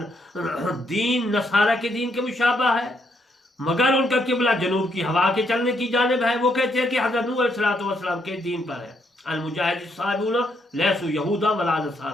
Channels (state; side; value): normal; both; correlation 0.75